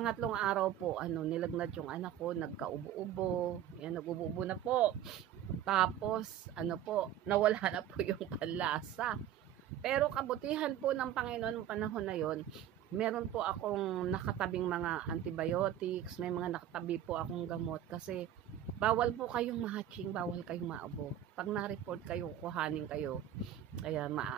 araw po, nilagnat yung anak ko, nagkaubo-ubo. Yan, nag-ubo na po. Tapos, nawala na po yung panlasa. Pero kabutihan po ng Panginoon noong panahon na yon, meron po akong nakatabing mga antibiotics, may mga nakatabi po akong gamot kasi bawal po kayong ma-hatching, bawal kayong maabo. Pag na-report kayo, kuhanin kayo, kaya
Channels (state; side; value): quieter; left; 10.9 dB